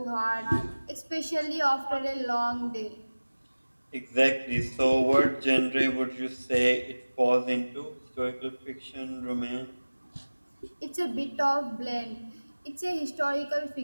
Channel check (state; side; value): inverted; both; correlation -1.00